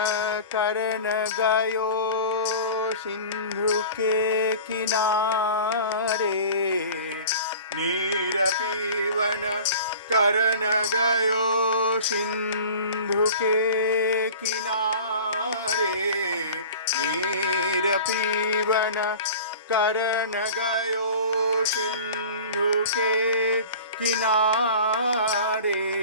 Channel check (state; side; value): inverted; both; correlation -0.40